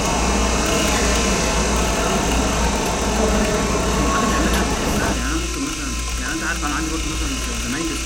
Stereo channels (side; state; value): left; noise; hum, 13 dB below the sound